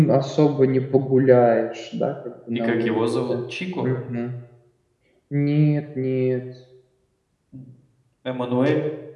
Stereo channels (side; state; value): both; identical; correlation 1.00